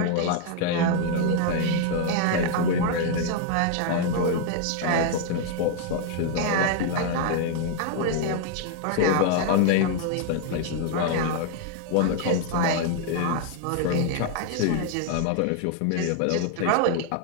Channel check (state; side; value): different; both; correlation 0.00